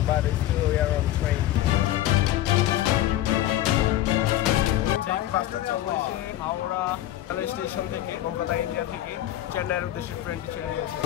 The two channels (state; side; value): quieter; right; 13.7 dB